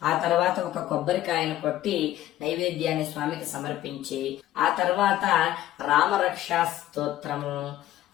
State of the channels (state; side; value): quieter; right; 13.8 dB